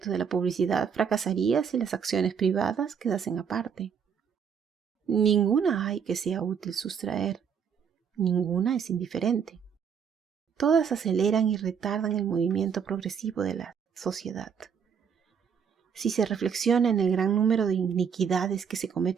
de la publicidad fracasaría si las acciones privadas quedasen aparte. Ninguna hay que sea útil sustraer, ninguna es indiferente. Todas aceleran y retardan el movimiento progresivo de la sociedad. Si se reflexiona en el gran número de iniquidades que se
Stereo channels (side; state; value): left; quieter; 7.1 dB